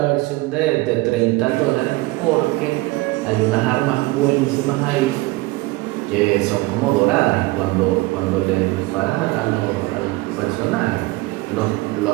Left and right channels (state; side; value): quieter; left; 21.1 dB